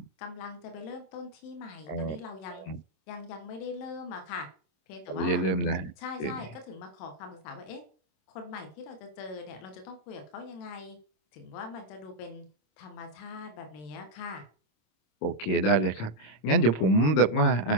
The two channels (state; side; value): late; right; 26 ms